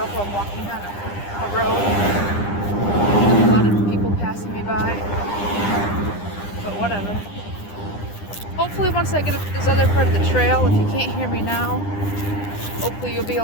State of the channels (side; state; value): right; late; 9.9 ms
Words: while I'm walking on a road. There's a lot of people passing me by, but whatever. Hopefully once I get up to this other part of the trail, if you can't hear me now, hopefully you'll be